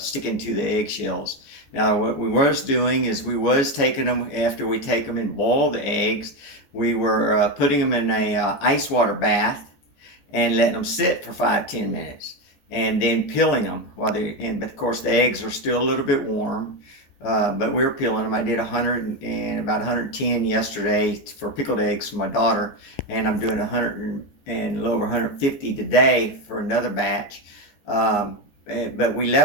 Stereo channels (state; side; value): late; right; 14 ms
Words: to the eggshells. Now what we was doing is we was taking them, after we take them and boil the eggs, we were putting them in a ice water bath and letting them sit for 5-10 minutes, and then peeling them but of course the eggs are still a little bit warm, but we were peeling them. I did 100 and about 110 yesterday for pickled eggs for my daughter, and I'm doing 100 and a little over 150 today for another batch. But we